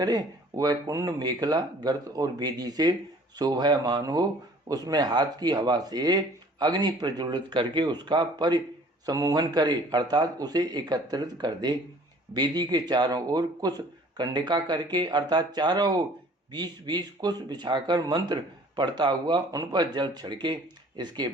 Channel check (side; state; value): both; normal; correlation 0.52